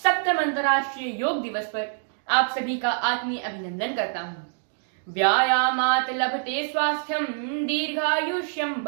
अंतर्राष्ट्रीय योग दिवस पर आप सभी का आत्मीय अभिनंदन करता हूँ। व्यायामात् लभते स्वास्थ्यम दीर्घायुष्यम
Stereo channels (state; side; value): silent; left; digital silence